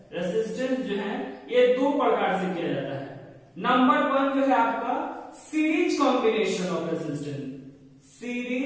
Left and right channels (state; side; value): identical; both; correlation 1.00